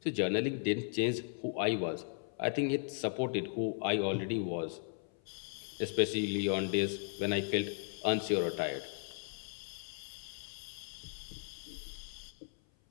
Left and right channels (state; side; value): silent; right; 53 dB below the other